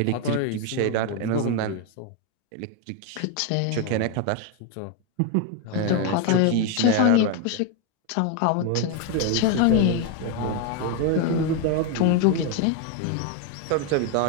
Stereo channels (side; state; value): both; different; correlation 0.01